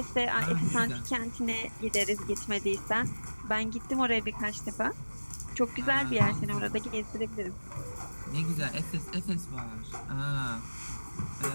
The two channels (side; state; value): both; inverted; correlation -1.00